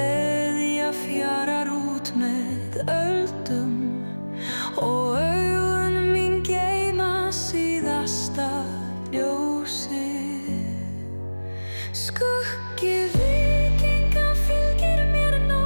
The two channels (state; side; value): inverted; both; correlation -1.00